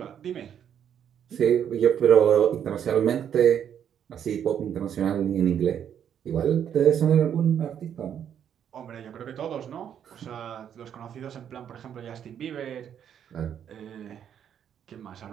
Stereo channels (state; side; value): quieter; left; 9.0 dB